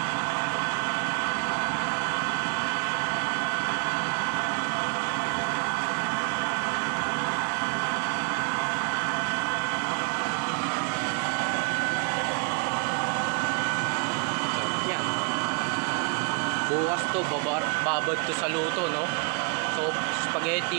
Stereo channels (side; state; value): left; quieter; 33.8 dB